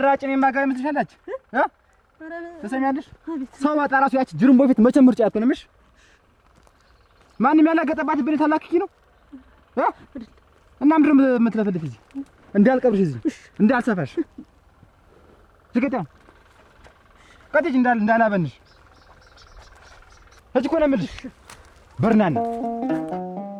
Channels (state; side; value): identical; both; correlation 1.00